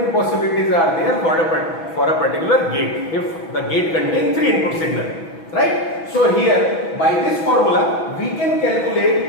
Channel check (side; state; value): right; late; 6.1 ms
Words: possibilities are there for a particular gate, if the gate contains 3 input signal. Right? So here by this formula we can